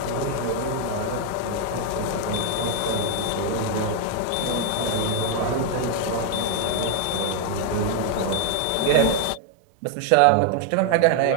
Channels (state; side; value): different; both; correlation 0.00